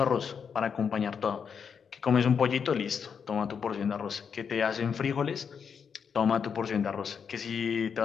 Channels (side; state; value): right; quieter; 6.7 dB